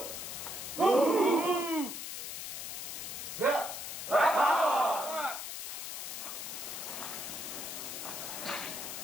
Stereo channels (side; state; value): left; noise; hiss, 6 dB below the sound